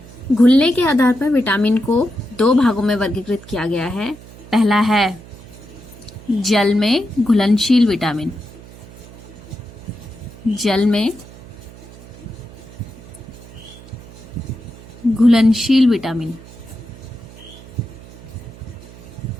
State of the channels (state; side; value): noise; right; hum, 19 dB below the sound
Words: घुलने के आधार पर विटामिन को दो भागों में वर्गीकृत किया गया है। पहला है जल में घुलनशील विटामिन। जल में घुलनशील विटामिन।